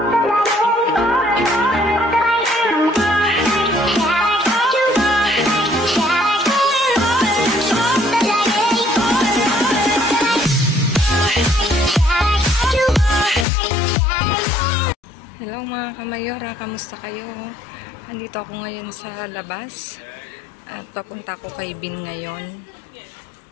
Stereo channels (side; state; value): right; drops out; at 13.5 s